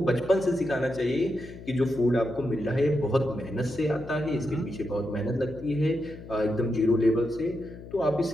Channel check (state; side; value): noise; left; hum, 15 dB below the sound